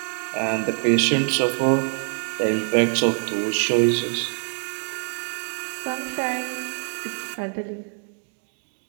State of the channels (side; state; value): left; silent; 55 dB below the other